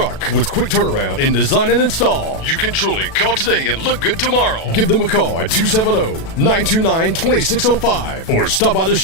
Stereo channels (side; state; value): right; late; 37 ms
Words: With quick turnaround in design and install, you can truly call today and look good tomorrow. Give them a call at 270-929-2605 or stop by the